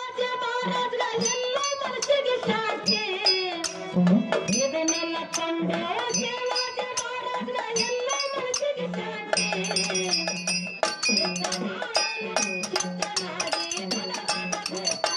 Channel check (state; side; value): identical; both; correlation 1.00